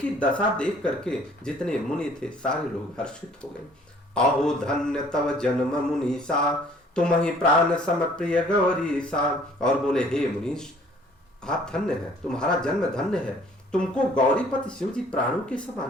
दशा देख करके जितने मुनि थे सारे लोग हर्षित हो गए। अहो धन्य तव जन्म मुनीसा, तुम ही प्राण सम प्रिय गौरीसा। और बोले हे मुनीश, आप धन्य हैं, तुम्हारा जन्म धन्य है, तुमको गौरीपति शिव जी प्राणों के समान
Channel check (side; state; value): both; normal; correlation 0.56